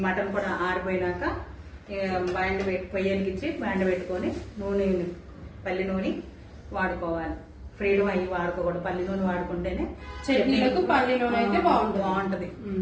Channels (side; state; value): both; identical; correlation 1.00